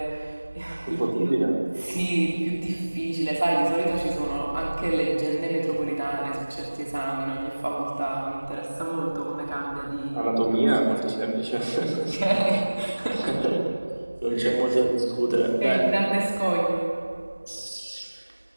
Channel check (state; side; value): inverted; both; correlation -1.00